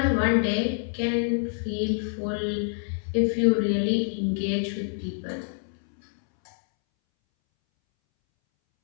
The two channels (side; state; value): right; silent; 61 dB below the other